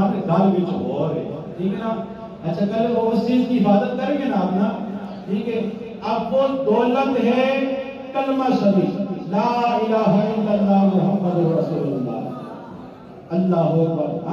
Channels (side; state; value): both; identical; correlation 1.00